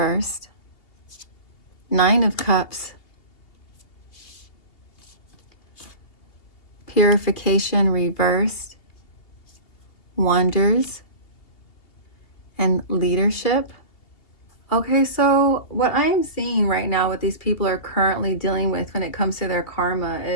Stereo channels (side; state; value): right; late; 2.7 ms